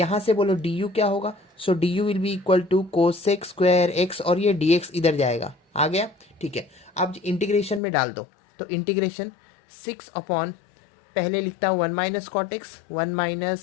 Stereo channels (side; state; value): right; drops out; at 7.8 s